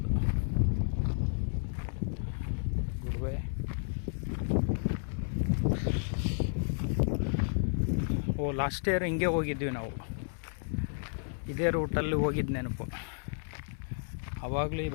ಗುರುವೆ ಲಾಸ್ಟ್ ಇಯರ್ ಹಿಂಗೆ ಹೋಗಿದ್ವಿ ನಾವು. ಇದೇ ರೂಟಲ್ಲಿ ಹೋಗಿದ್ದು ನೆನಪು. ಆವಾಗಲೂ ಈ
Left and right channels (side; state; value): right; silent; 56 dB below the other